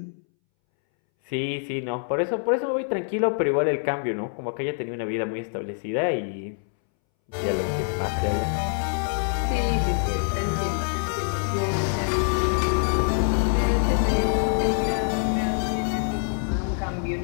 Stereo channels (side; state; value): right; silent; 62 dB below the other